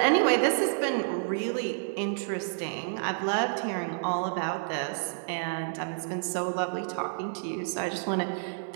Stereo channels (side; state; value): left; silent; 56 dB below the other